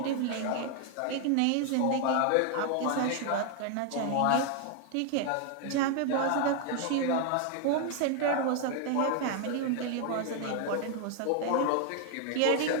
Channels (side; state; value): both; different; correlation 0.00